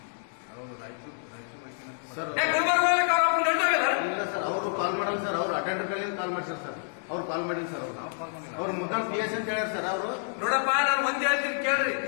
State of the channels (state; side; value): silent; right; digital silence